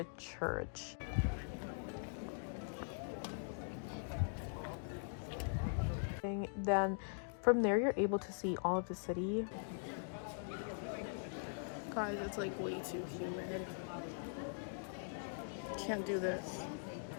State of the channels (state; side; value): silent; right; digital silence